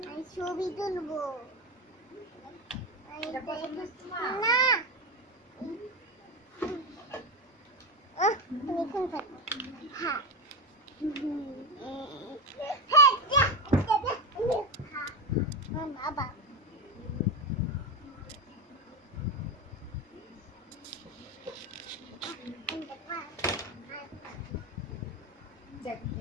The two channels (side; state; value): both; normal; correlation 0.14